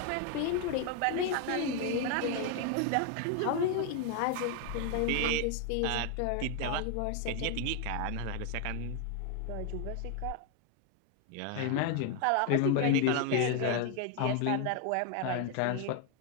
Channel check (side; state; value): both; different; correlation 0.01